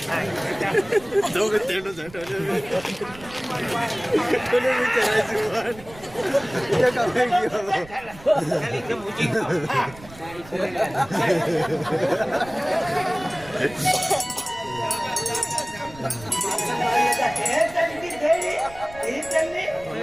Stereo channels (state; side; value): noise; right; rumble, 19 dB below the sound